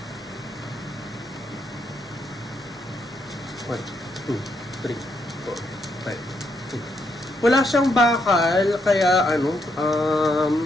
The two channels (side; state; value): both; normal; correlation 0.78